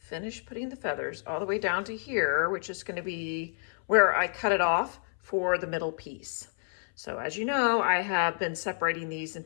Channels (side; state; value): right; silent; 58 dB below the other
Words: putting the feathers all the way down to here, which is going to be where I cut it off for the middle piece. So as you know, I have been separating these